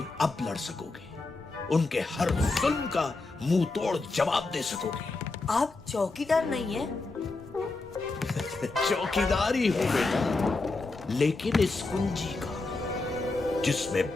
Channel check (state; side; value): quieter; right; 3.4 dB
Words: अब लड़ सकोगे। उनके हर जुल्म का मुंह तोड़ जवाब दे सकोगे। आप चौकीदार नहीं है? चौकीदार ही हूं बेटा, लेकिन इस कुंजी का जिसमें